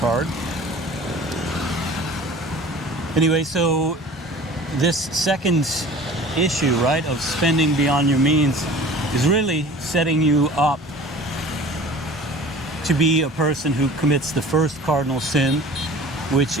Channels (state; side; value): normal; both; correlation 0.43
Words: Anyway, so this second issue, right, of spending beyond your means is really setting you up to be a person who commits the first cardinal sin, which